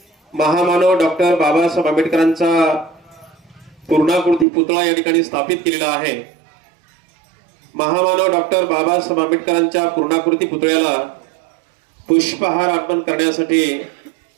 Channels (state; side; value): drops out; left; at 4.5 s